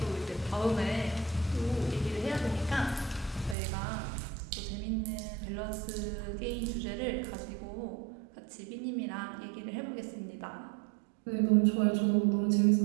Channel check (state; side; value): drops out; left; at 3.6 s